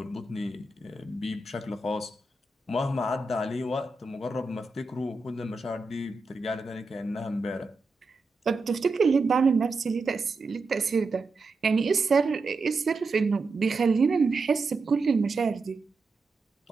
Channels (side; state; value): left; quieter; 3.5 dB